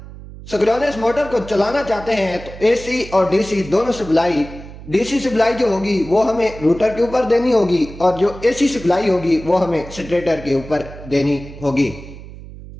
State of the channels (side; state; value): right; noise; hum, 15 dB below the sound